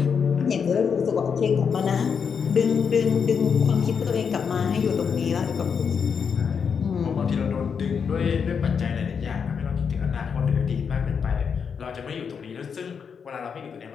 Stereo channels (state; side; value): quieter; right; 6.5 dB